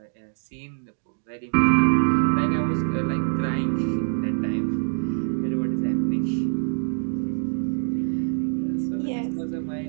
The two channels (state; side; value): silent; left; 62 dB below the other